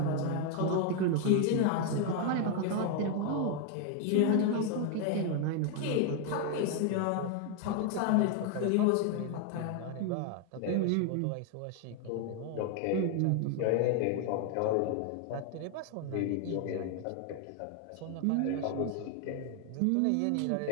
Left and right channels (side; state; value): both; different; correlation 0.01